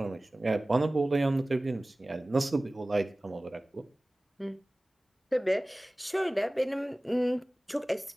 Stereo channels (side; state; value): both; normal; correlation 0.98